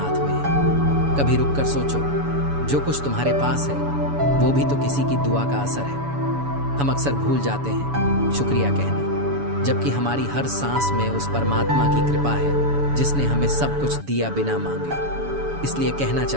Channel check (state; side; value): late; left; 7.1 ms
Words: में है। कभी रुक कर सोचो, जो कुछ तुम्हारे पास है वो भी तो किसी की दुआ का असर है। हम अक्सर भूल जाते हैं शुक्रिया कहना, जबकि हमारी हर सांस में उस परमात्मा की कृपा है जिसने हमें सब कुछ दिया बिना मांगे। इसलिए कहना